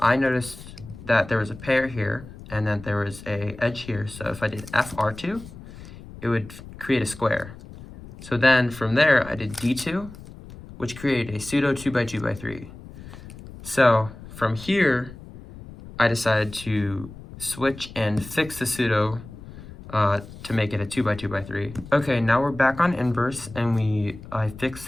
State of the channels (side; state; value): left; noise; rumble, 16 dB below the sound